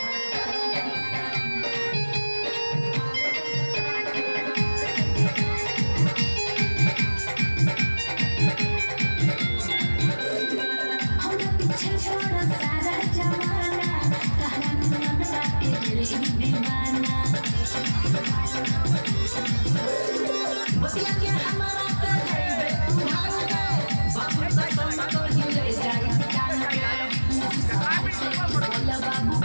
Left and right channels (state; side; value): inverted; both; correlation -1.00